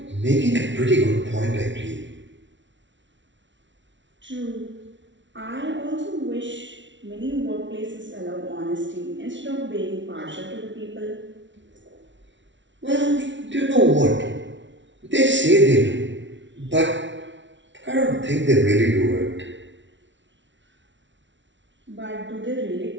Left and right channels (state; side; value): late; left; 0.54 ms